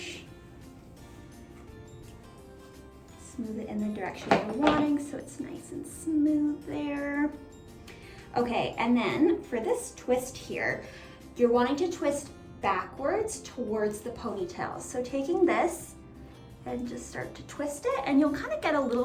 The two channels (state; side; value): identical; both; correlation 1.00